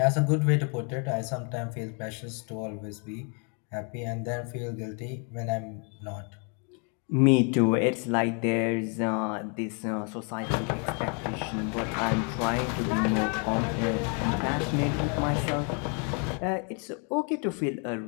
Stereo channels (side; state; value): right; quieter; 38.5 dB